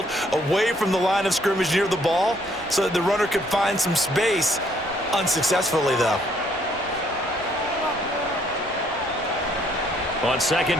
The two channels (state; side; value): normal; both; correlation 0.66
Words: away from the line of scrimmage near the ball, so that the runner could find some space. Unsuccessfully, though. On